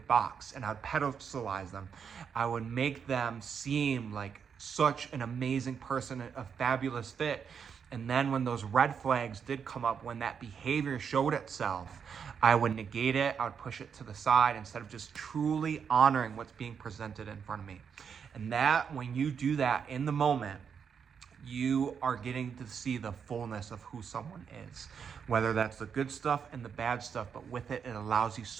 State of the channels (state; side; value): quieter; left; 6.9 dB